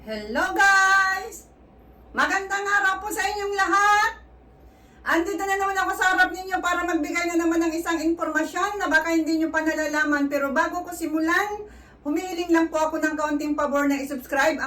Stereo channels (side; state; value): both; identical; correlation 1.00